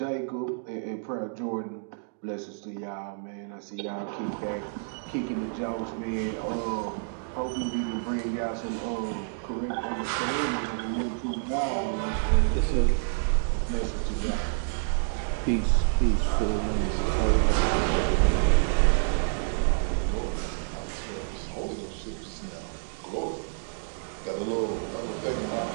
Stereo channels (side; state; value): left; silent; digital silence